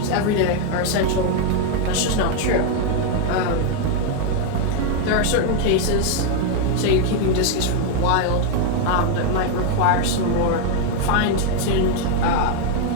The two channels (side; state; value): both; different; correlation 0.00